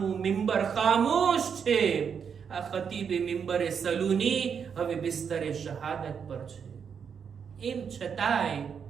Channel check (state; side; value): quieter; left; 6.9 dB